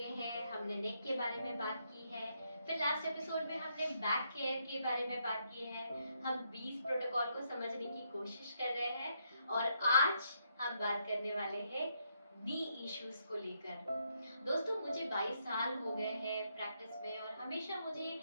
हैं। हमने नेक के बारे में बात की है, फिर लास्ट एपिसोड में हमने बैक केयर के बारे में बात की है। हम 20 प्रोटोकॉल को समझने की कोशिश कर रहे हैं और आज हम बात करने वाले हैं नी इश्यूज को लेकर। दोस्तों, मुझे 22 साल हो गए हैं प्रैक्टिस में और हमेशा मुझे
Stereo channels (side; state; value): both; inverted; correlation -0.77